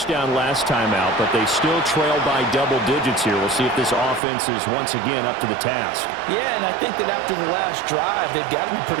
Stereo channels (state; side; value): drops out; left; at 4.2 s